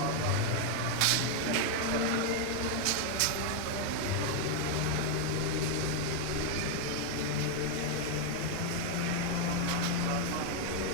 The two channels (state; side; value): different; both; correlation 0.01